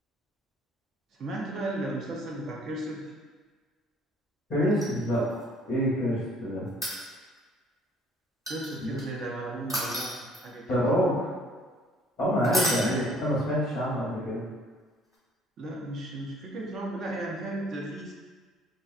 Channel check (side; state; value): both; normal; correlation 0.58